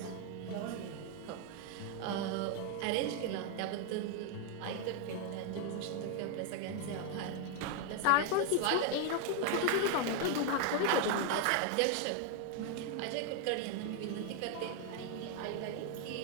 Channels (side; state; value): both; different; correlation 0.00